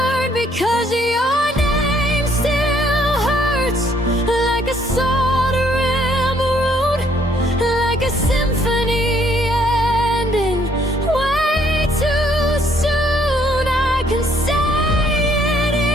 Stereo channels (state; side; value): normal; both; correlation 0.66